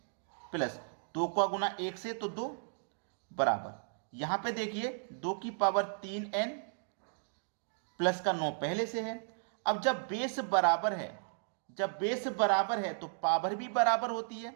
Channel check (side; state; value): left; silent; digital silence